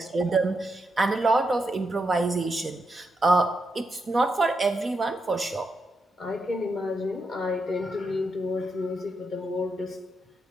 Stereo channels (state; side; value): normal; both; correlation 0.83